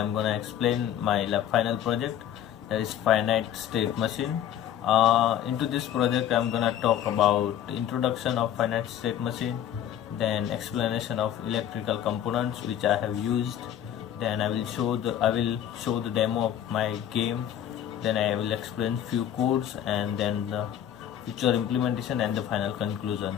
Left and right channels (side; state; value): right; quieter; 10.5 dB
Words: gonna explain my final project, that is Finite State Machine. Into this project I'm gonna talk about introduction of Finite State Machine, then explanation of electrical components which I have used, then I will show the demo of my game, then I will explain few codes and then the future implementation and the final conclusion.